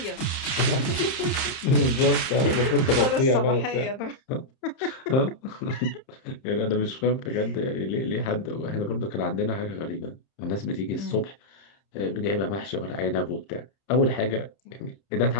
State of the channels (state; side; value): late; right; 31 ms